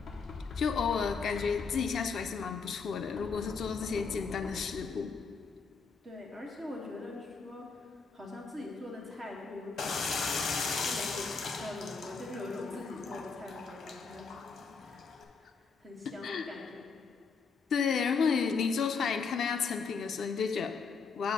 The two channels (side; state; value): right; quieter; 5.1 dB